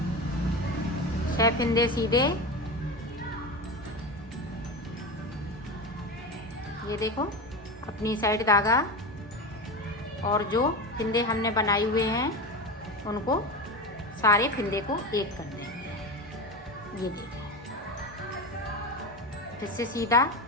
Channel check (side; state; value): both; normal; correlation 0.23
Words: छह फिंदे सीधे। ये देखो अपनी साइड धागा, और जो फिंदे हमने बनाए हुए हैं उनको सारे फिंदे को एक कर देंगे। ये देखो फिर से सीधा,